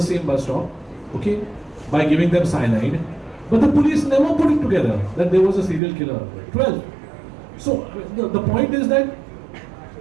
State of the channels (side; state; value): left; drops out; at 5.8 s